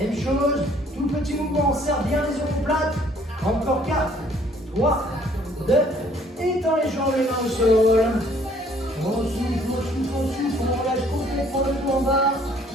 chose, tout petit mouvement, on serre bien les omoplates. Encore 4, 3, 2, étends les jambes, les mains au sol. On souffle, on souffle, on souffle, on relâche complètement le dos en bas.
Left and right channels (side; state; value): both; normal; correlation 0.60